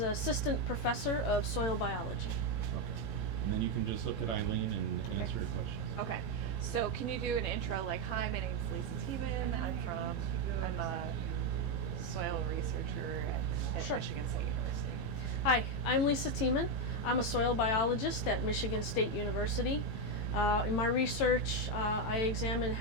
Assistant Professor of Soil Biology. Okay. And then you can just look at Eileen and answer your questions. Okay. So can you do an intro like, hi, my name is Lisa Tiemann. I'm a soil researcher at Sure. Michigan State University. Hi, I'm Lisa Tiemann. I'm a soil biologist at Michigan State University. In my research, I examine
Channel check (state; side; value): late; right; 15 ms